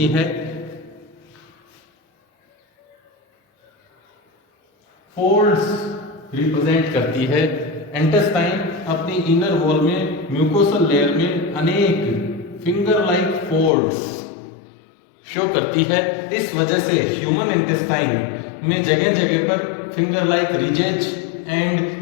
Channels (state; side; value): drops out; right; at 13.7 s